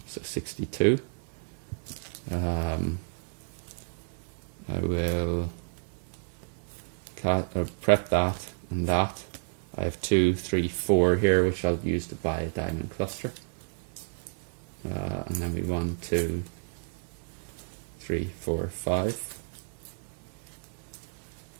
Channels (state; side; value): silent; left; digital silence